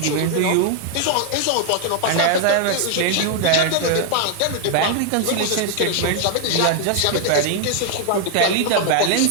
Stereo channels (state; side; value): different; both; correlation 0.00